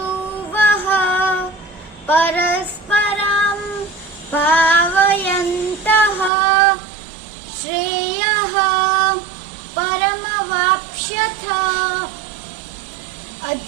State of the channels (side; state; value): left; drops out; at 6.3 s